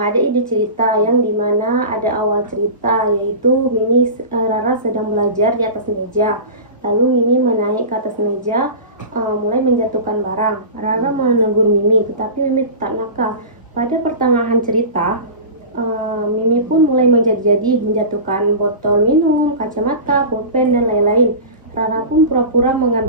ide cerita yang dimana ada awal cerita, yaitu Rara sedang belajar di atas meja. Lalu Mimi menaik ke atas meja, mulai menjatuhkan barang. Rara menegur Mimi, tetapi Mimi tetap nakal. Pada pertengahan cerita, Mimi pun mulai menjadi menjatuhkan botol minum, kacamata, pulpen, dan lain-lain. Rara pun pura-pura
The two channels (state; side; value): inverted; both; correlation -0.31